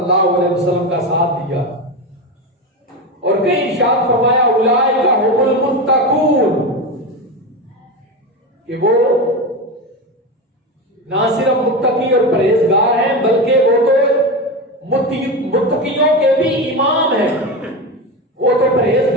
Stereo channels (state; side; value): normal; both; correlation 0.19